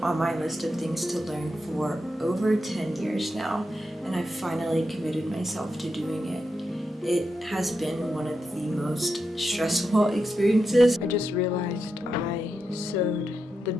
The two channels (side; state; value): both; normal; correlation 0.87